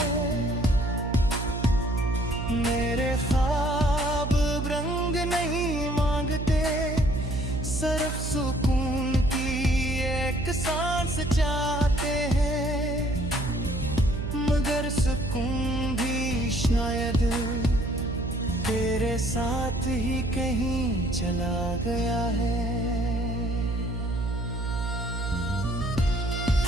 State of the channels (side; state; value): right; noise; hum, 3 dB below the sound